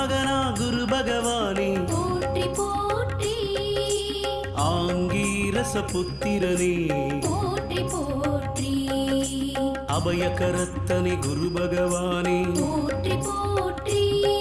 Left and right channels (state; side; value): identical; both; correlation 1.00